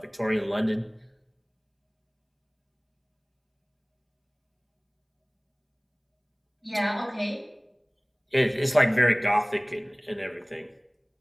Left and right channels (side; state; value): both; identical; correlation 1.00